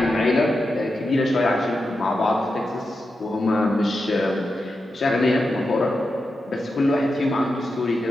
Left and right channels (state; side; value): normal; both; correlation 0.89